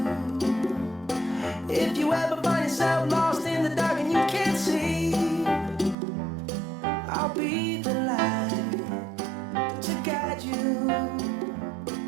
If you ever find yourself lost in the dark and you can't see, I'll be the light to guide you.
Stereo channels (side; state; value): left; drops out; at 6.0 s